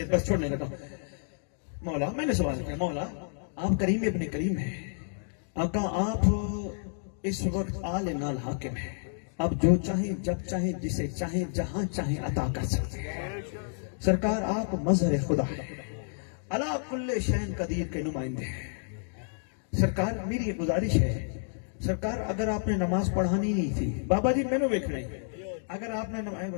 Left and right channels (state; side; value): silent; right; digital silence